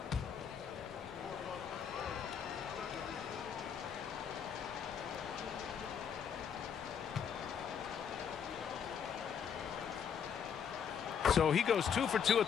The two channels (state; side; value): quieter; right; 7.6 dB